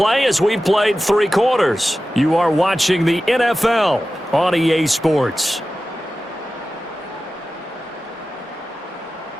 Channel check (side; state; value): both; normal; correlation 0.94